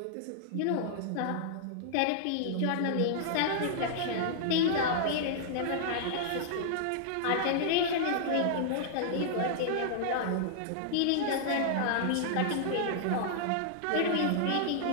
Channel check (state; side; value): different; both; correlation -0.01